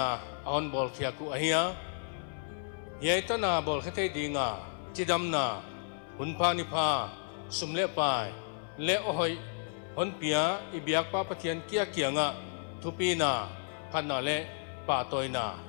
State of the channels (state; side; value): silent; right; 56 dB below the other